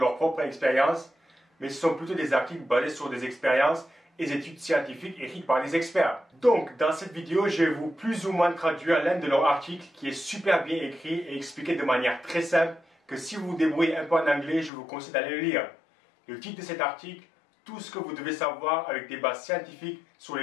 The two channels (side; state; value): right; drops out; at 14.7 s